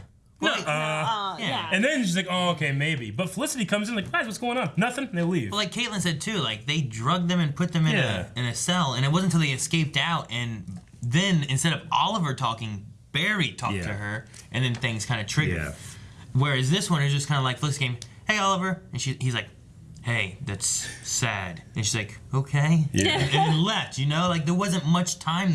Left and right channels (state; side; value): identical; both; correlation 1.00